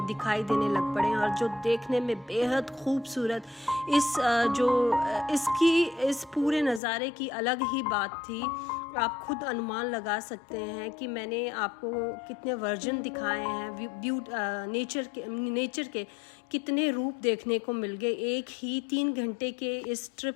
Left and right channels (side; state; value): right; drops out; at 6.8 s